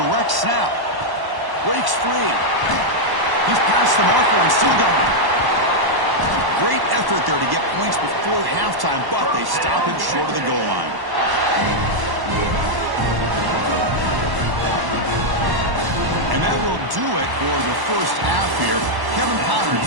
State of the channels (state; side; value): late; left; 1.1 ms